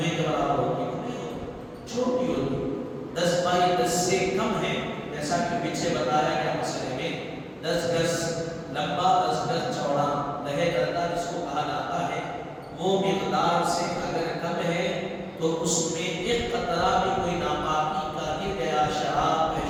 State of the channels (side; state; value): both; identical; correlation 1.00